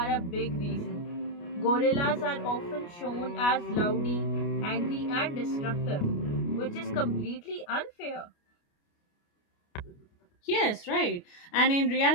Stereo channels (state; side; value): late; right; 29 ms